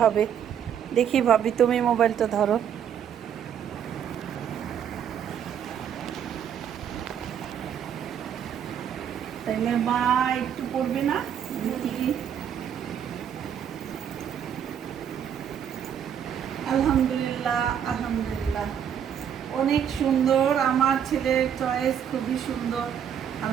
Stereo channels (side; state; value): left; quieter; 8.8 dB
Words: হবে। দেখি ভাবি, তুমি মোবাইলটা ধরো। তাইলে মা একটু পড়বে না? দেখি। আলহামদুলিল্লাহ, আলহামদুলিল্লাহ। অনেক সুন্দর, আমার ছেলের চয়েস খুবই সুন্দর।